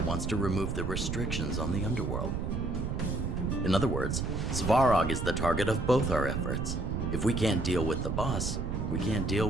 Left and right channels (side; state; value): right; noise; rumble, 1 dB below the sound